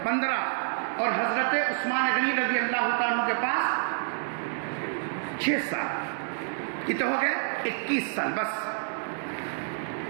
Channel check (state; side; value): silent; left; digital silence